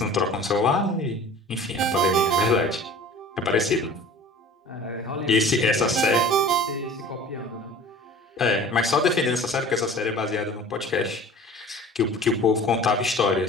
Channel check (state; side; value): normal; both; correlation 0.43